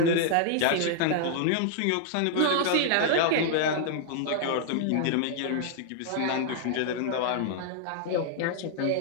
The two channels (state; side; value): different; both; correlation -0.01